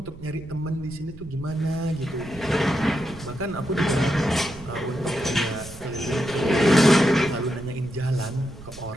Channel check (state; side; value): noise; right; rumble, 17 dB below the sound